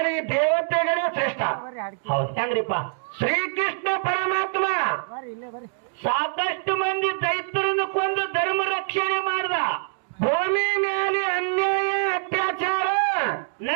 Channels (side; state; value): left; silent; digital silence